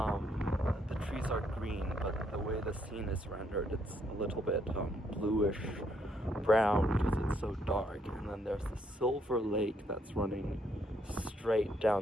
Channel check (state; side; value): normal; both; correlation 0.72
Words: The trees are green, but the way the scene is rendered, it's a little bit bluish brown because it's so dark. And then there's the silver lake that's running straight